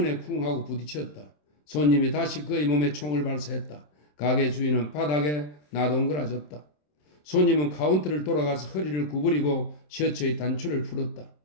쿵 하고 부딪혔다. 손님이 다시 그의 몸에 총을 발사했다. 가게 주인은 바닥에 나동그라졌다. 손님은 카운터를 돌아가서 허리를 구부리고 셔츠의 단추를 풀었다.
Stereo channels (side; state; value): right; late; 27 ms